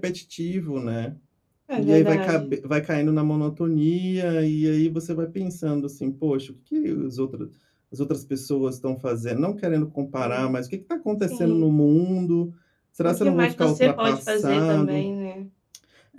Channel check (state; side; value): identical; both; correlation 1.00